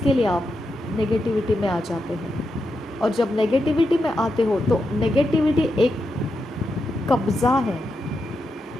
लिए आप नेगेटिविटी में आ जाते हैं और जब नेगेटिविटी में आते हो तो नेगेटिविटी एक कब्ज़ा है,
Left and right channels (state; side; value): normal; both; correlation 0.86